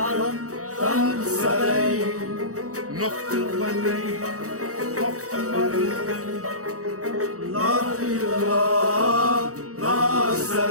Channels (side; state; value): left; late; 0.65 ms